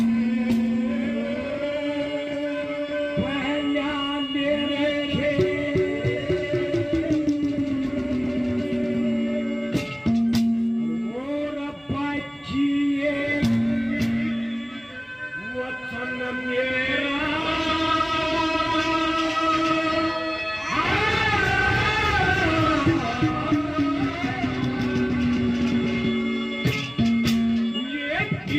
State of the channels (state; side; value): identical; both; correlation 1.00